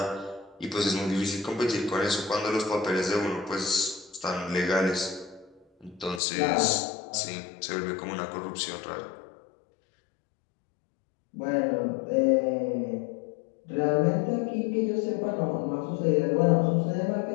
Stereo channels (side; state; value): right; drops out; at 6.2 s